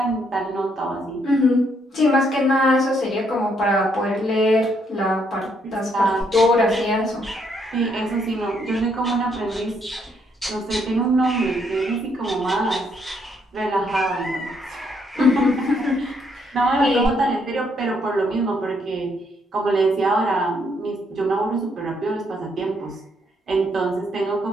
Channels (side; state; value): both; normal; correlation 0.72